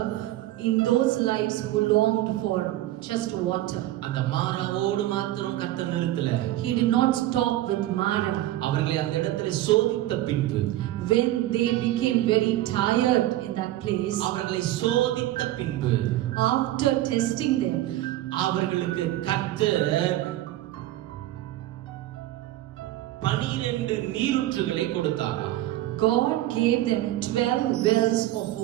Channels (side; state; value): left; quieter; 14.9 dB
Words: in those lives who longed for just water. அந்த மாராவோடு மாத்திரம் கர்த்தர் நிறுத்தல. He did not stop with Mara. அவர்களை அந்த இடத்துல சோதித்த பின்பு, when they became very tired in that place, அவர்களை சோதித்த பின்பு, after testing them, அவர்களுக்கு கர்த்தர் 12 நீரூற்றுகளை கொடுத்தாராம். God gave them 12 wells of